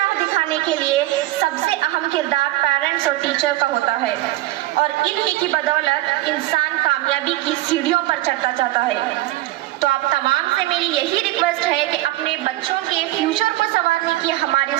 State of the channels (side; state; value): left; quieter; 16.5 dB